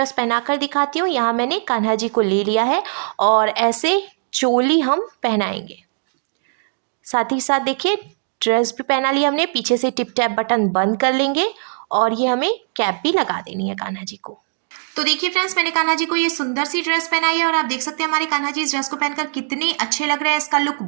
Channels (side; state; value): left; silent; digital silence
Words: पहनाकर दिखाती हूँ। यहाँ मैंने कान्हा जी को ले लिया है और ऐसे चोली हम पहनाएंगे। साथ ही साथ देखिए ड्रेस भी पहना लिया हमने, पीछे से टिप टैप बटन बंद कर लेंगे और ये हमें कैप भी लगा देनी है कान्हा जी को। तो देखिए फ्रेंड्स, मैंने कान्हा जी को ये सुंदर सी ड्रेस पहनाई है और आप देख सकते हैं हमारे कान्हा जी इस ड्रेस को पहनकर कितने अच्छे लग रहे हैं। इसका लुक